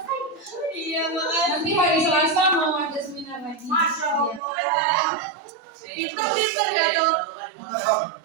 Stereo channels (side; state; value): left; drops out; at 4.4 s